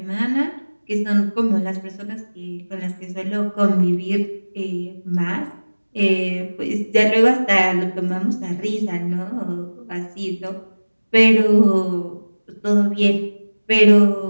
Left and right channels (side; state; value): both; inverted; correlation -1.00